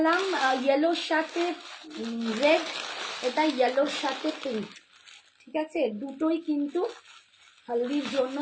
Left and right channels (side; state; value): both; identical; correlation 1.00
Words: ইয়েলোর সাথে রেড, এটা ইয়েলোর সাথে পিঙ্ক, ঠিক আছে। দুটোই কিন্তু হলদির জন্য